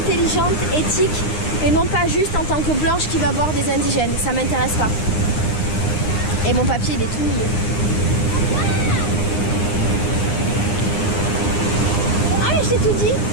éthique, et non pas juste en tant que blanche qui va voir des indigènes. Ça m'intéresse pas. Et mon papier, il est tout mouillé. Ah mais je t'ai tout dit.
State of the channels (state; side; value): late; right; 9.7 ms